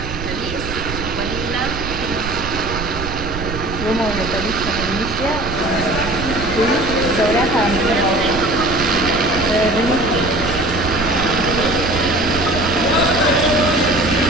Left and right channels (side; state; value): right; noise; rumble, 8 dB below the sound